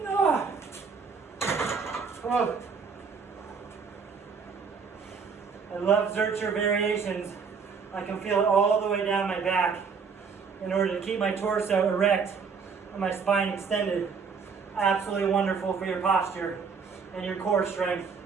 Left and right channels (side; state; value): left; quieter; 5.6 dB